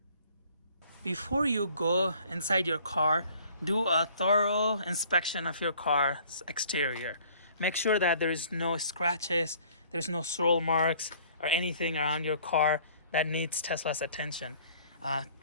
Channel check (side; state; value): both; inverted; correlation -0.55